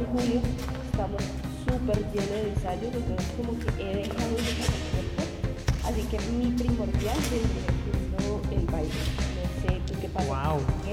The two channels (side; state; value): both; identical; correlation 1.00